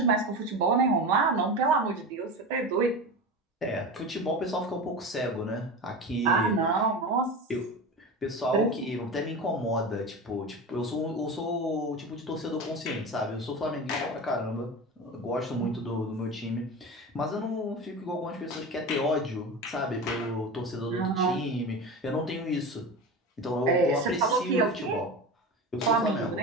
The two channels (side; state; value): both; normal; correlation 0.27